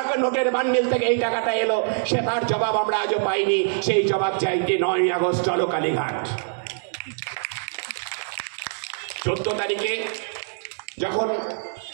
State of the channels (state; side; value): silent; left; 62 dB below the other